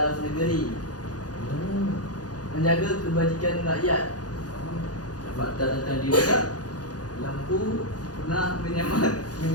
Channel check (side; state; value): right; late; 0.68 ms